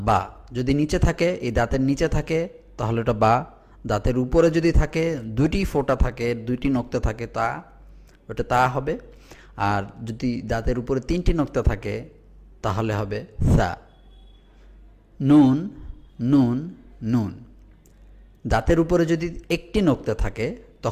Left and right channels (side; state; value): both; identical; correlation 1.00